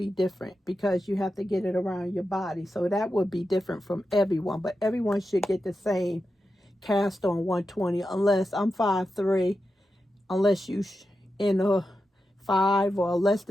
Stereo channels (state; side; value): normal; both; correlation 0.89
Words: different, because you have to get it around your body. So that would be different from everyone, but everyone should get the same cast on 120, unless I'm 5'3", unless you in a 5 or less